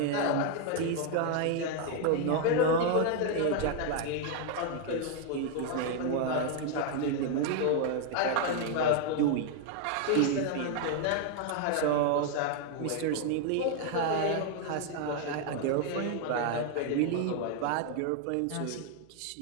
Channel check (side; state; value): both; different; correlation 0.00